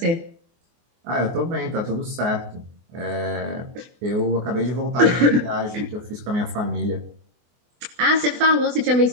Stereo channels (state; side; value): late; left; 24 ms